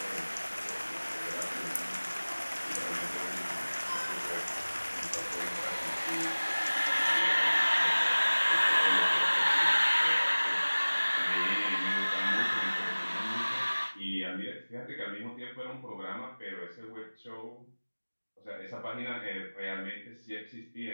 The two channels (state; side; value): inverted; both; correlation -1.00